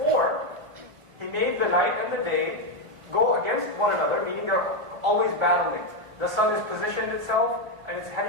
He made the night and the day go against one another, meaning they're always battling. The sun has positioned itself, and it's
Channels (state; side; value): late; left; 1.4 ms